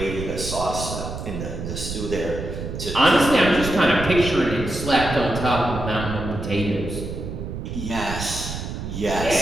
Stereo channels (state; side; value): noise; right; rumble, 6 dB below the sound